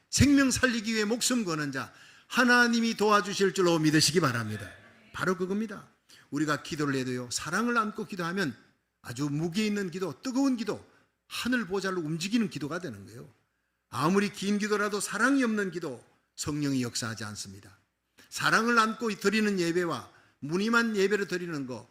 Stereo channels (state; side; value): identical; both; correlation 1.00